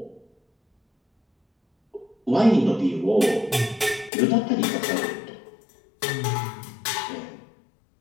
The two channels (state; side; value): drops out; right; at 4.1 s